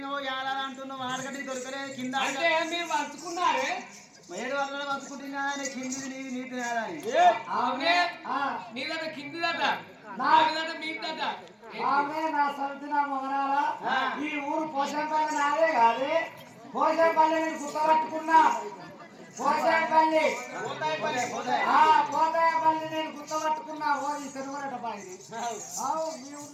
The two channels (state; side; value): identical; both; correlation 1.00